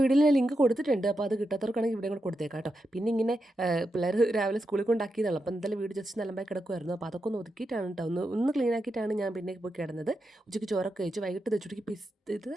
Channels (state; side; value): normal; both; correlation 0.87